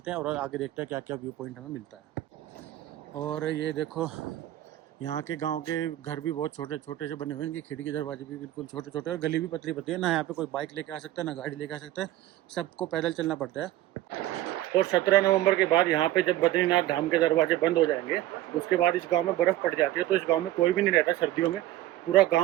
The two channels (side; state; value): left; quieter; 14.9 dB